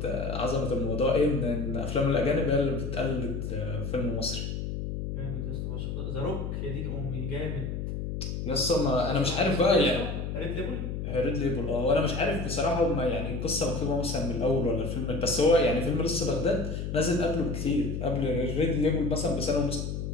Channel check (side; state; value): left; noise; hum, 4 dB below the sound